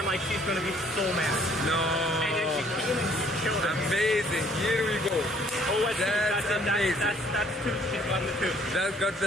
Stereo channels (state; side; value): normal; both; correlation 0.60